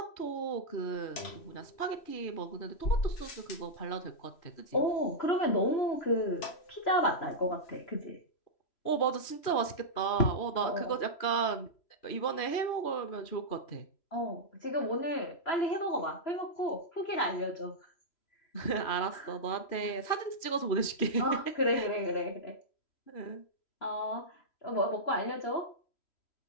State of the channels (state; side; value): late; right; 3.0 ms